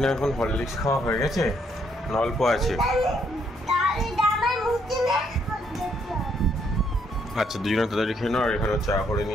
এখন হরলিক্স খাওয়া হয়ে গেছে, অল্প আছে। আচ্ছা, দুজনে তাড়াতাড়ি খেয়ে নাও। আর এখানে চা করে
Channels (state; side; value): normal; both; correlation 0.71